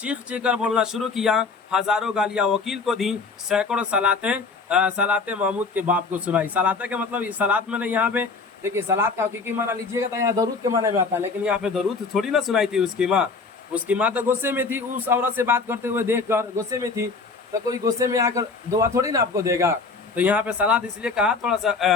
चीख कर बोलना शुरू किया। हजारों गालियां वकील को दी, सैकड़ों सलातें महमूद के बाप को सुनाई। सलाते का मतलब सलात मैंने यहाँ पे देखिए, सलात का हकीकी माना लीजिएगा तो यहाँ दरूद के माने में आता है, लेकिन यहाँ पे दरूद थोड़ी ना सुनाई थी उसकी माँ। उसकी माँ तो गुस्से में थी, उस औरत से बात करते हुए देख कर गुस्से में थी, तो कोई गुस्से में आकर दुआ थोड़ी ना आपको देगा। तो यहाँ पे सलात इसलिए कहा, थोड़ा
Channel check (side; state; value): right; quieter; 4.4 dB